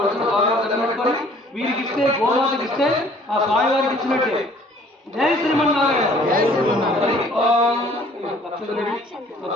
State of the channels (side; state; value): both; normal; correlation 0.55